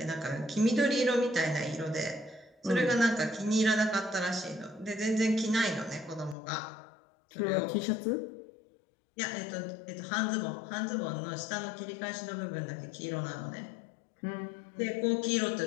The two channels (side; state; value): right; drops out; at 6.4 s